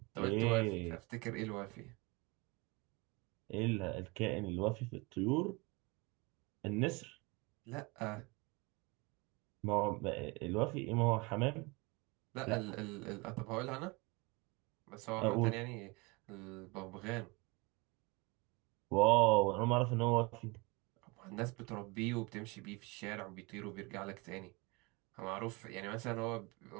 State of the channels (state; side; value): quieter; left; 26.7 dB